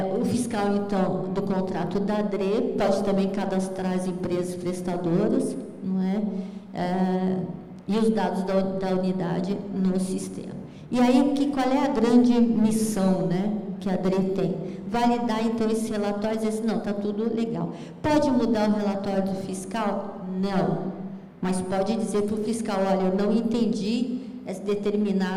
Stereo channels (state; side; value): identical; both; correlation 1.00